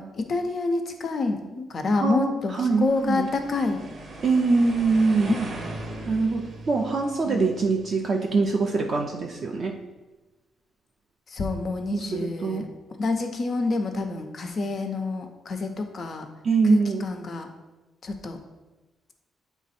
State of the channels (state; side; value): normal; both; correlation 0.83